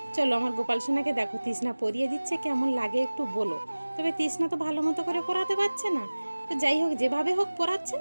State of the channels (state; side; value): inverted; both; correlation -1.00